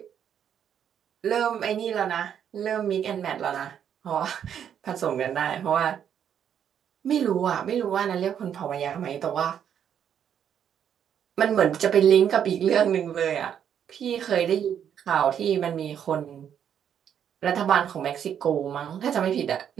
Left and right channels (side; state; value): left; quieter; 8.9 dB